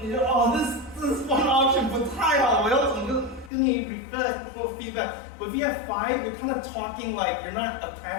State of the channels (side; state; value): right; drops out; at 3.5 s